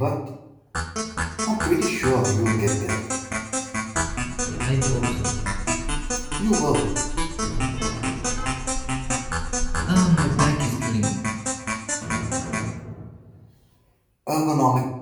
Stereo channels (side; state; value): both; identical; correlation 1.00